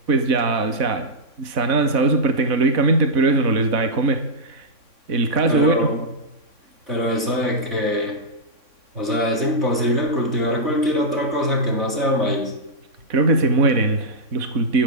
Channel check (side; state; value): left; late; 3.6 ms